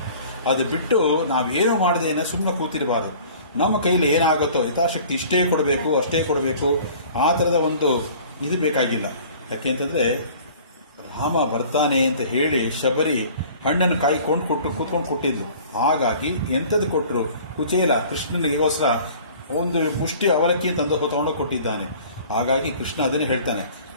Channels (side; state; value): both; inverted; correlation -0.48